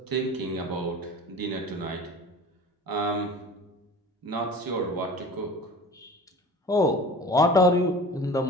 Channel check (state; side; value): normal; both; correlation 0.39